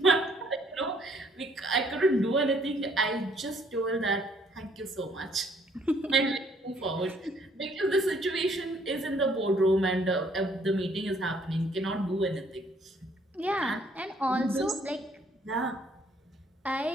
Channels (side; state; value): both; normal; correlation 0.64